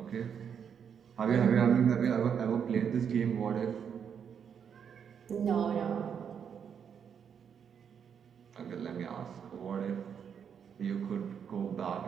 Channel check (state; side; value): quieter; left; 7.6 dB